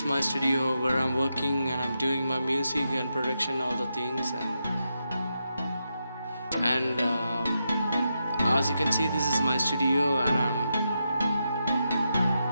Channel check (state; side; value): inverted; both; correlation -0.85